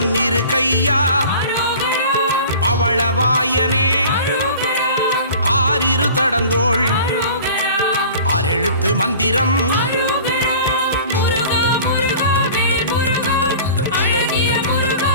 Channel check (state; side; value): inverted; both; correlation -0.43